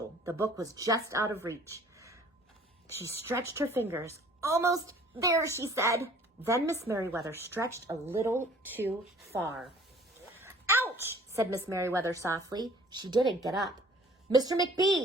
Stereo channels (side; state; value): both; normal; correlation 0.53